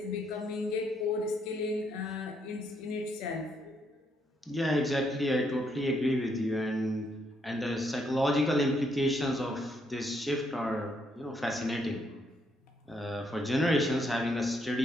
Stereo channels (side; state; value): both; normal; correlation 0.74